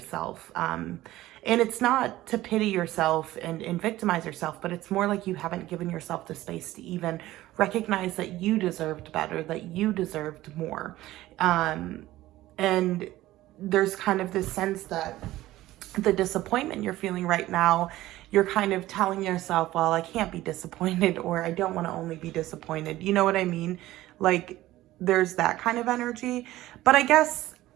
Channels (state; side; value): quieter; left; 16.0 dB